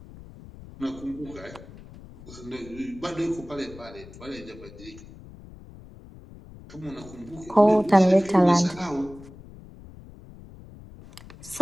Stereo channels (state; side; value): noise; left; rumble, 18 dB below the sound